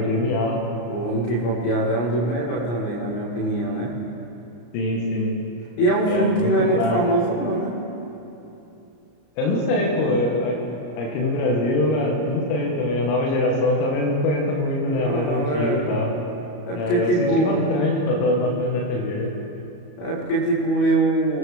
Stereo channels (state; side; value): late; right; 34 ms